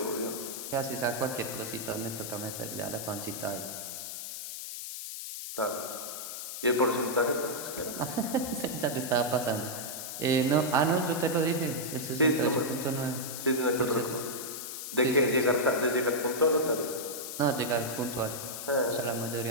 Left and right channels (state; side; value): noise; left; hiss, 7 dB below the sound